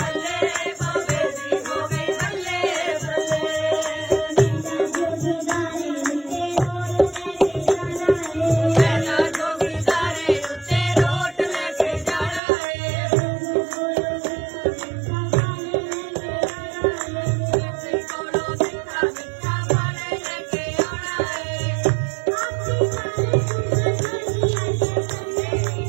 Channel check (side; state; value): left; drops out; at 12.4 s